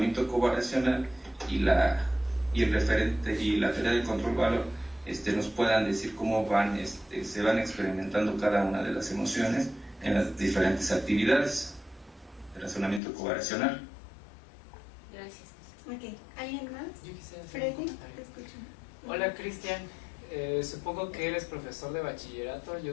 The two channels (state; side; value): drops out; right; at 13.0 s